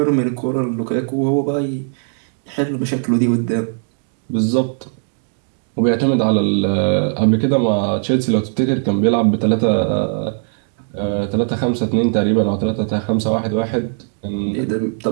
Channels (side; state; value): left; silent; digital silence